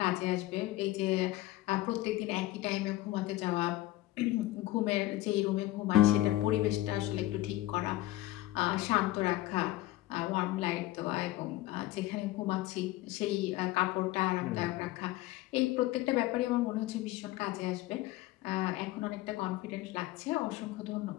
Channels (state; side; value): quieter; right; 16.9 dB